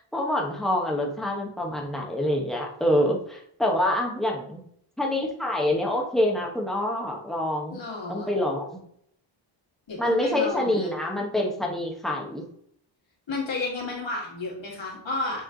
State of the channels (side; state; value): both; normal; correlation 0.54